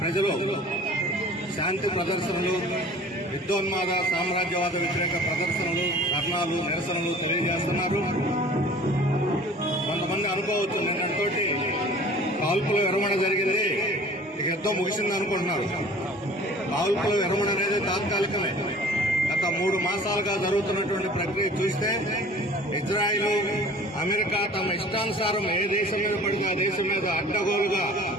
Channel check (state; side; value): normal; both; correlation 0.46